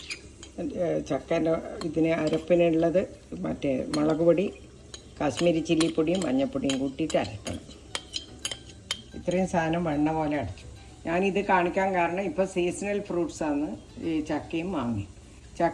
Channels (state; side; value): identical; both; correlation 1.00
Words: ഇതിന് അരപ്പിനുള്ളത് മറ്റേ മുളക് പൊടി, കാശ്മീരി ചില്ലിപ്പൊടിയും മഞ്ഞൾപ്പൊടിയും കൂട്ടിയിട്ട് അരക്കണം. ഇത്രയും സാധനം വെണ്ണ പോലെ അടച്ചു. ഞാനിത് കാണിക്കാൻ കാരണം ഇപ്പോൾ സീസണൽ ഫ്രൂട്ട്സാണ് ഈ ചക്കയും മാങ്ങയും.